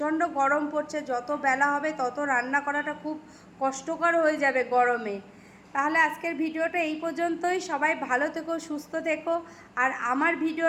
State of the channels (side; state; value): both; identical; correlation 1.00